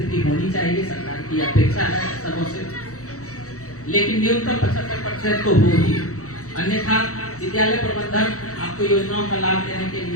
होनी चाहिए, सरकार की अपेक्षा है सबों से, लेकिन न्यूनतम 75% तो हो ही, अन्यथा विद्यालय प्रबंधन आपको योजनाओं का लाभ देने के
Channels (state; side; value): late; right; 0.65 ms